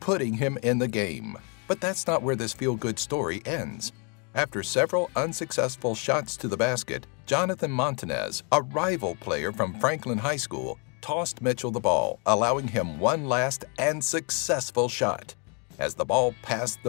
him in the game. But that's not where this feel-good story ends. After several unsuccessful shots to the basket, Jonathan Montanez, a rival player from Franklin High School, tossed Mitchell the ball, allowing him one last and successful shot. As the ball passed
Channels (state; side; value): quieter; right; 36.7 dB